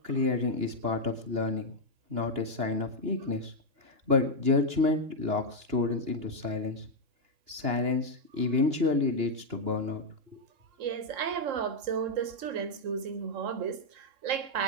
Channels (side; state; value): left; late; 2.9 ms